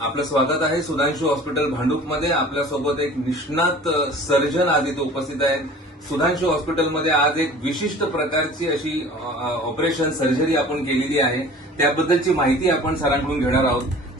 आपलं स्वागत आहे सुधांशू हॉस्पिटल भांडूपमध्ये. आपल्यासोबत एक निष्णात सर्जन आज इथे उपस्थित आहेत. सुधांशू हॉस्पिटलमध्ये आज एक विशिष्ट प्रकारची अशी ऑपरेशन सर्जरी आपण केलेली आहे. त्याबद्दलची माहिती आपण सरांकडून घेणार आहोत.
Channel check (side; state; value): both; normal; correlation 0.44